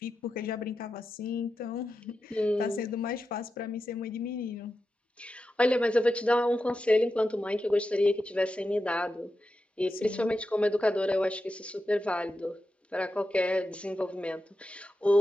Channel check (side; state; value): both; normal; correlation 0.90